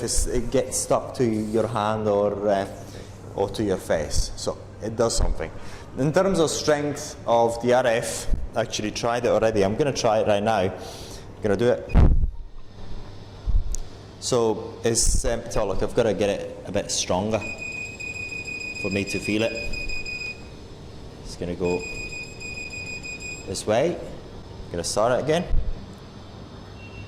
it gets stuck to your hand or to your face. So it does something. In terms of strength of the RF, I actually tried it already. I'm going to try it right now. I'm going to do it. So it's so look, I've got to get it a bit stronger for me to feel it. It's going to go this way. I'm going to start it again.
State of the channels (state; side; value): identical; both; correlation 1.00